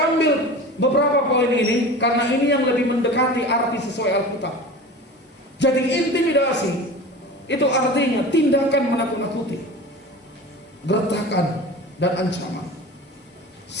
ambil beberapa poin ini karena ini yang lebih mendekati arti sesuai Alkitab. Jadi intimidasi itu artinya tindakan menakut-nakuti, gertakan dan ancaman.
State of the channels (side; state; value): both; normal; correlation 0.35